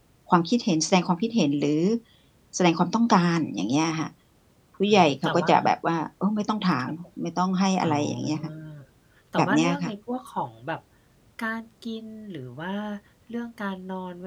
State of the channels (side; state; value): both; identical; correlation 1.00